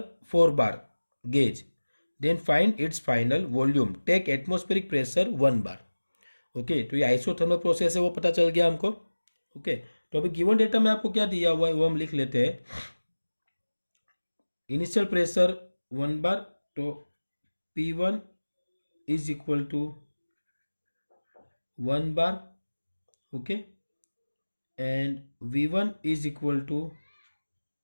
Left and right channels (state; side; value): inverted; both; correlation -1.00